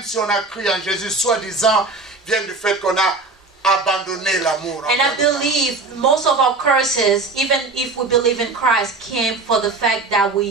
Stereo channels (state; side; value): quieter; left; 3.7 dB